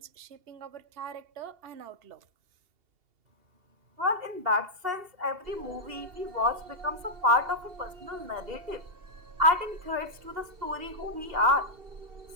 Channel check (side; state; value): left; late; 2.7 ms